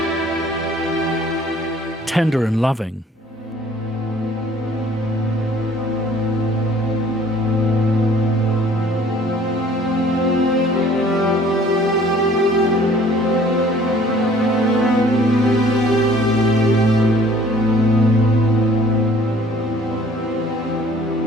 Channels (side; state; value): both; normal; correlation 0.55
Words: Tender and loving.